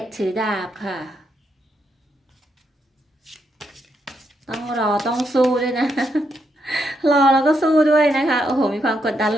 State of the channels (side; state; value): both; normal; correlation 0.79